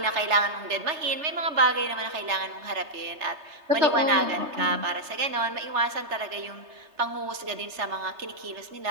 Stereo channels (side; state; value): left; late; 3.3 ms